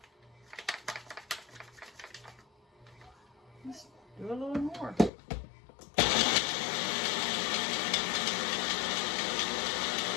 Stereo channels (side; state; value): right; drops out; at 5.1 s